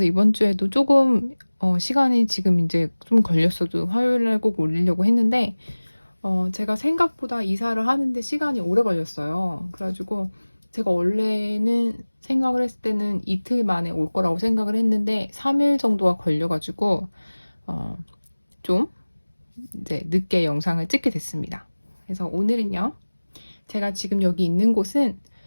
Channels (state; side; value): inverted; both; correlation -1.00